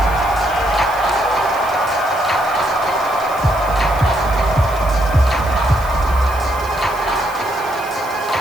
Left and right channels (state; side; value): noise; right; hiss, 18 dB below the sound